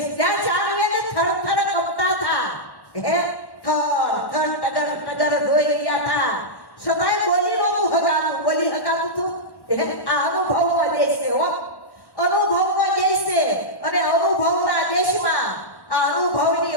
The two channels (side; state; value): right; late; 1.1 ms